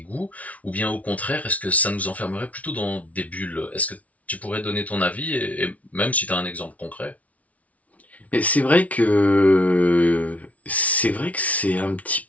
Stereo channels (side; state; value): right; late; 0.068 ms